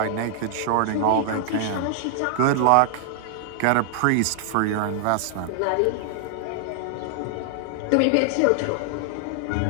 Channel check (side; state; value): both; different; correlation 0.00